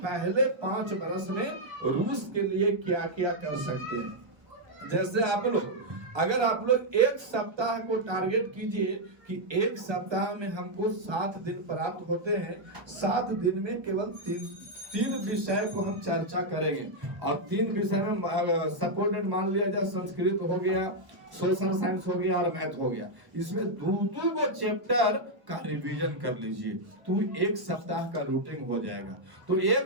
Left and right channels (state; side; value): late; left; 1.0 ms